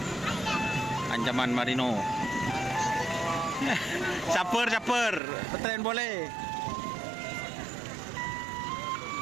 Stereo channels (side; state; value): left; drops out; at 5.2 s